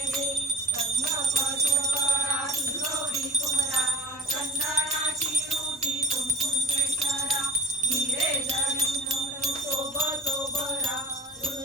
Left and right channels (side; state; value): both; normal; correlation 0.43